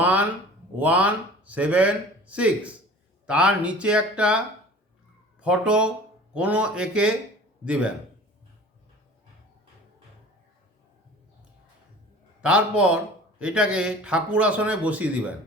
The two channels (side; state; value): both; normal; correlation 0.43